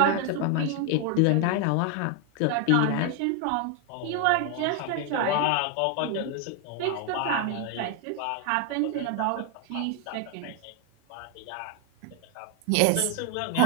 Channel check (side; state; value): both; different; correlation 0.01